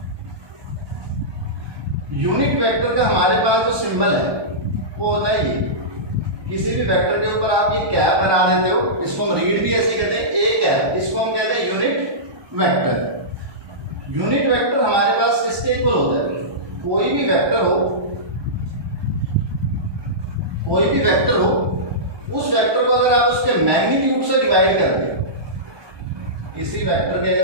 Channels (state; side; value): late; left; 1.2 ms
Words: यूनिट वेक्टर का हमारे पास जो सिंबल है वो होता है ये। किसी भी वेक्टर के ऊपर आप ये कैप बना देते हो, इसको हम रीड भी ऐसे कहते हैं, ए कैप, इसको हम कहते हैं यूनिट वेक्टर। यूनिट वेक्टर हमारे पास किसके इक्वल होता है? कोई भी वेक्टर हो, कोई भी वेक्टर हो, उस वेक्टर को अगर आप उसके मैग्नीट्यूड से डिवाइड कर दें, इसी वेक्टर के